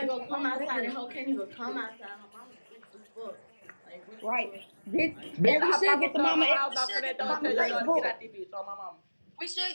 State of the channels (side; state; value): both; inverted; correlation -1.00